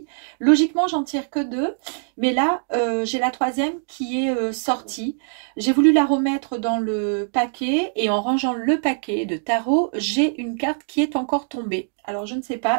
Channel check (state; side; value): silent; left; digital silence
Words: Logiquement, j'en tire que deux, mais là, j'ai la troisième qui est sortie. J'ai voulu la remettre dans le paquet et en rangeant le paquet de tarot, j'ai une carte qui est encore tombée. Alors je ne sais